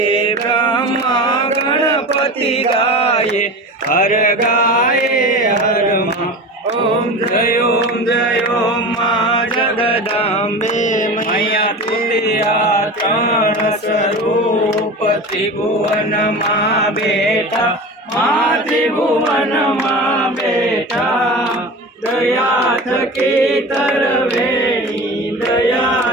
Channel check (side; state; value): both; normal; correlation 0.31